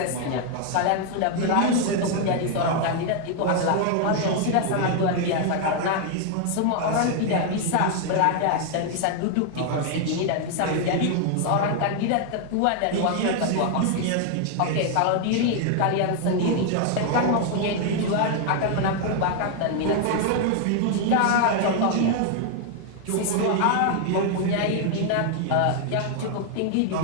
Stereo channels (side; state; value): both; different; correlation 0.00